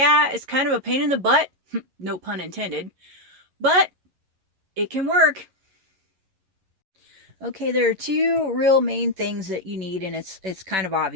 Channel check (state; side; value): late; left; 11 ms